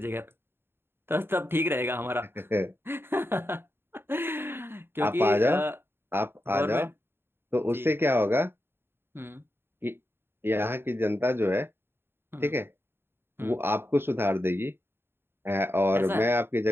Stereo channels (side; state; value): left; late; 0.11 ms